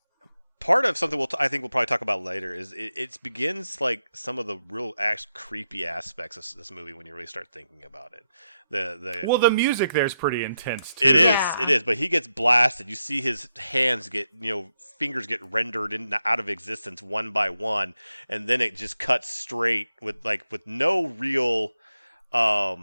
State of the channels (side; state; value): both; inverted; correlation -0.84